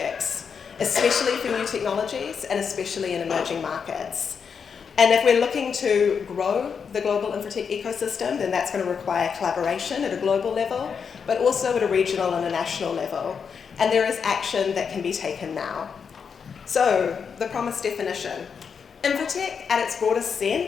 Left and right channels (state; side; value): quieter; right; 6.4 dB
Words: especially for new technologies and especially in emerging markets. And if we're looking to grow the global Infratech ecosystem, then that's going to require collaboration at a global level, but also at a regional and a national level. And there is action that can be taken now. So, the promised definition. Infratech, at its broadest